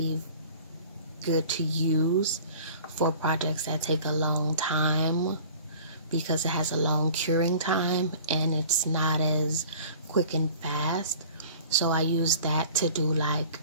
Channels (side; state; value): both; inverted; correlation -0.46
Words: good to use for projects that take a long time because it has a long curing time and it's not as quick and fast. So I use that to do like